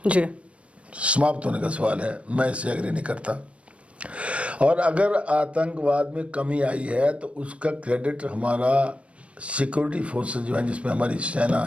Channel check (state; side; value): late; left; 0.062 ms